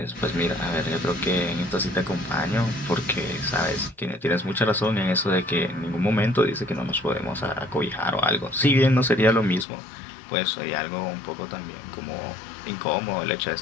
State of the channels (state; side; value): drops out; right; at 9.7 s